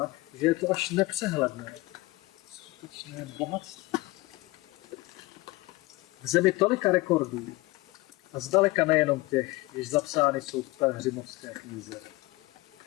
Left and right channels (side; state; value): right; quieter; 21.5 dB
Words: že je to až nepřehledné. Skutečné bohatství. V zemi tolika rekordů a zdaleka nejenom těch, jež zapsány jsou v Pelhřimovské knize.